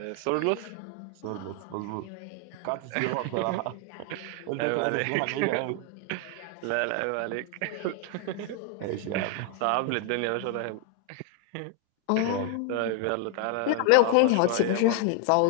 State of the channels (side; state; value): both; different; correlation 0.00